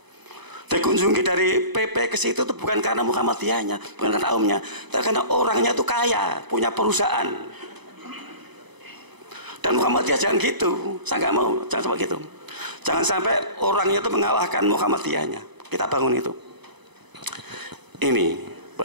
Dikunjungi dari PP ke situ itu bukan karena Muhammadiyahnya, bukan karena umumnya, tapi karena orangnya itu kaya, punya perusahaan. Dan Muhammadiyah jangan gitu, saya nggak mau, jangan sampai gitu. Jangan sampai orangnya itu mengalahkan Muhammadiyahnya. Kita bangun itu. Ini,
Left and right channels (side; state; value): left; late; 1.0 ms